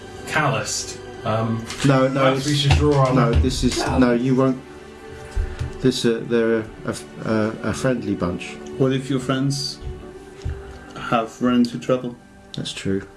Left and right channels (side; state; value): both; identical; correlation 1.00